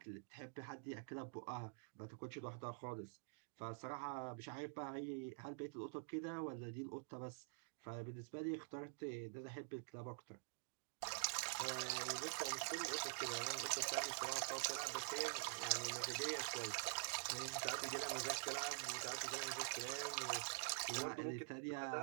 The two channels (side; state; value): left; silent; digital silence